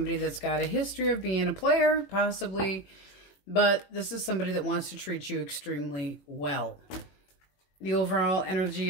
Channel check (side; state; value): right; late; 21 ms